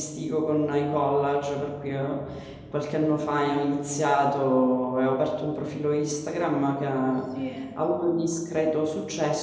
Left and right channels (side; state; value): both; identical; correlation 1.00